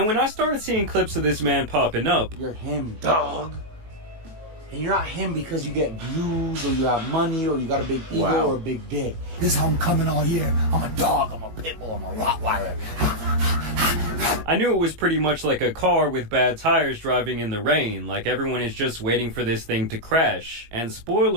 when I started seeing clips of this man popping up, "You're him, dog. And you're not him because you get views or you have money or you got a big ego or a big dick. This is how I'm coming all year. I'm a dog, I'm a pit bull, I'm a Rottweiler." I knew it was pretty much like a car with bad tires driving in the rain, like everyone is just waiting for this thing to crash. And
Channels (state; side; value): late; left; 19 ms